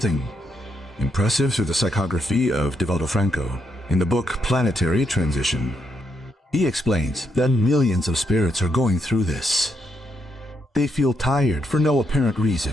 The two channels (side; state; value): both; normal; correlation 0.79